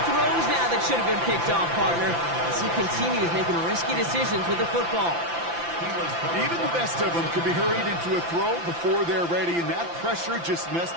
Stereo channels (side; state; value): left; late; 5.9 ms